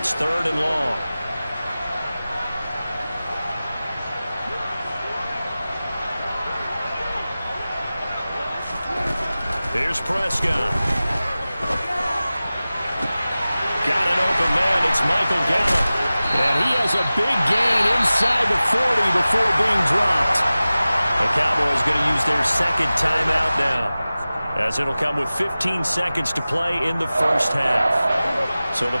3rd and long. Here's Prescott. Got an open man. It's Michael Gallup. And he has a big gain inside the 40 before being dropped. The Cowboys going to use their second timeout now, as it'll come with 15 seconds to play in the first half. So the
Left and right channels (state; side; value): inverted; both; correlation -0.97